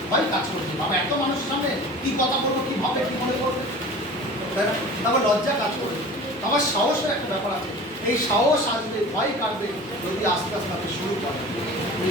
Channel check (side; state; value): both; normal; correlation 0.39